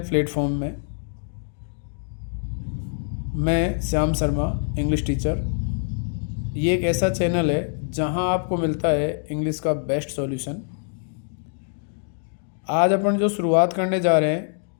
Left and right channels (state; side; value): silent; right; digital silence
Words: में मैं श्याम शर्मा इंग्लिश टीचर। ये एक ऐसा चैनल है जहां आपको मिलता है इंग्लिश का बेस्ट सॉल्यूशन। आज अपन जो शुरुआत करने जा रहे हैं